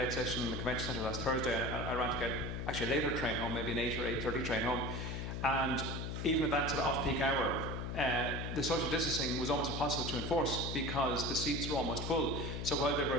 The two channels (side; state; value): left; noise; hum, 4 dB below the sound